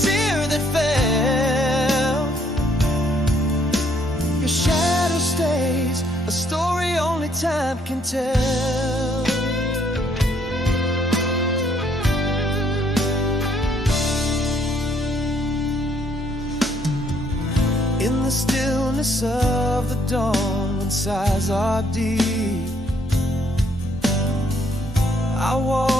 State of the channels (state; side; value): normal; both; correlation 0.67